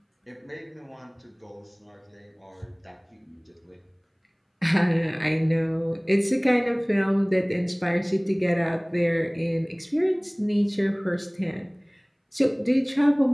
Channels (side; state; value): both; identical; correlation 1.00